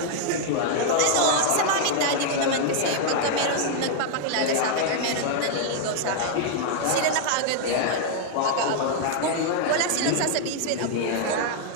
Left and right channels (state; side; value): different; both; correlation 0.00